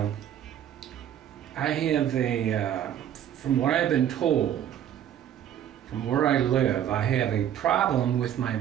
I have from what I've been told, from where I live, I have a problem with my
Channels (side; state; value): left; quieter; 10.3 dB